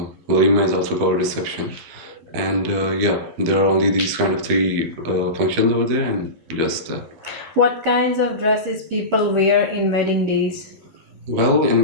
Walima is also called reception. And yeah, there are only these kind of three functions over there, and just that. What kinds of dresses people wear in wedding days? Well, in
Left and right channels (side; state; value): left; late; 12 ms